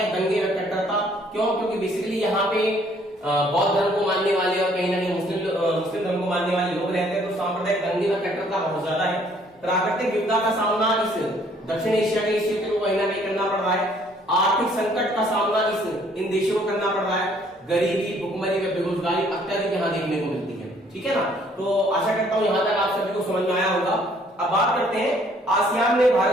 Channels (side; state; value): both; normal; correlation 0.62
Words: दंगे व कट्टरता, क्यों? क्योंकि बेसिकली यहाँ पे बौद्ध धर्म को मानने वाले और कहीं ना कहीं मुस्लिम धर्म को मानने वाले लोग रहते हैं, तो सांप्रदायिक दंगे व कट्टरता बहुत ज्यादा है। प्राकृतिक विपदा का सामना इस दक्षिण एशिया के क्षेत्र को कहीं ना कहीं करना पड़ रहा है। आर्थिक संकट का सामना इन देशों को करना पड़ रहा है। गरीबी, भुखमरी व बेरोजगारी अत्यधिक यहाँ देखने को मिलती है, ठीक है ना। तो आशा करता हूँ यहाँ तक आप सभी को समझ में आया होगा। अब बात करते हैं आसियान में